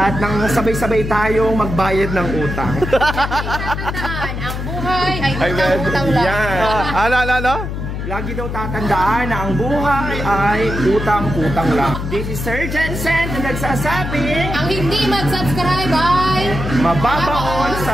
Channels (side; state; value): left; noise; hum, 5 dB below the sound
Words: nang sabay-sabay tayong magbayad ng utang. Tatandaan, ang buhay ay utang-utang lang. Yan. Ano? Lagi daw tatandaan na ang buhay ay utang-utang lang. This is Sir Jensen na nagsasabing Ang hindi mag-subscribe ay mababaon